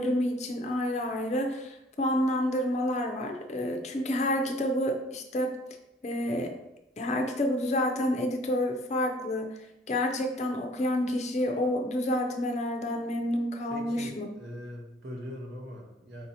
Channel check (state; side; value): normal; both; correlation 0.55